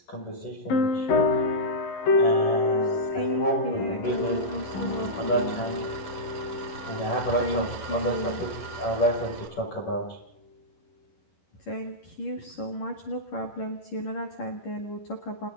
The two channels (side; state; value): right; late; 11 ms